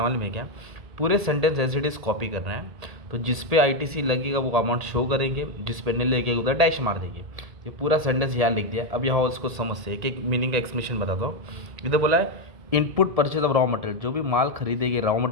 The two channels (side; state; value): left; late; 1.8 ms